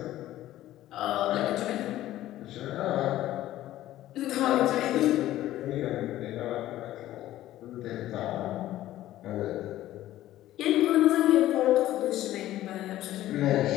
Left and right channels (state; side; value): quieter; right; 14.2 dB